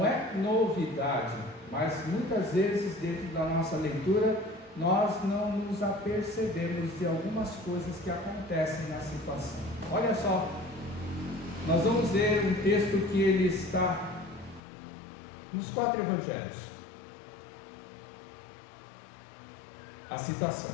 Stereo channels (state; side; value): drops out; right; at 14.6 s